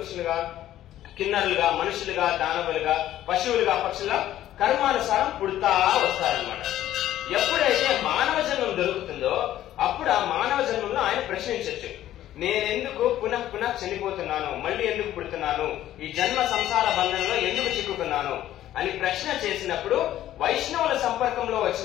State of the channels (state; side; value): quieter; right; 12.9 dB